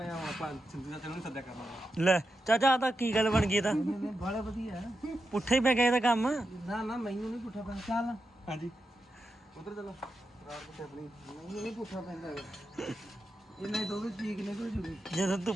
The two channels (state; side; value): normal; both; correlation 0.88